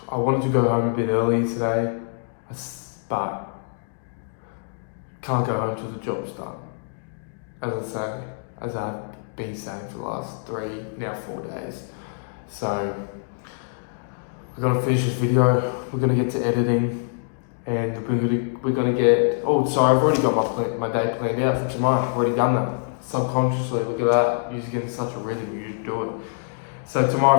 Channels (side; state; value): right; silent; digital silence